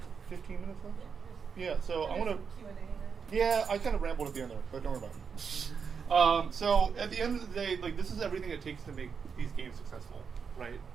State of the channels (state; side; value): quieter; left; 6.1 dB